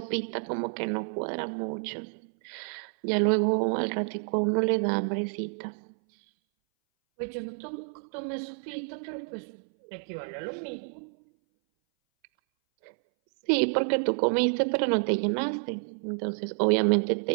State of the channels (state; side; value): silent; left; 59 dB below the other